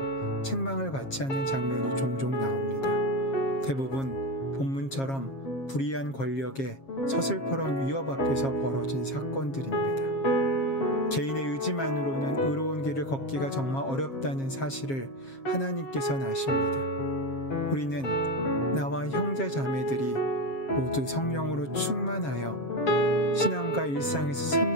책망을 받지 않는 장면이 종종 나옵니다. 대부분 본문처럼 불의한 권력의 서슬퍼런 위협 앞에서 벌어진 사건들입니다. 개인의 의지만으로는 의로운 길을 걷기가 정말 어렵다는 사실을 하나님께서는 아십니다. 우리는 나와 형제 자매들이 모두 성령으로 충만하여 신앙과 일상에서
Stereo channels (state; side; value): late; right; 7.4 ms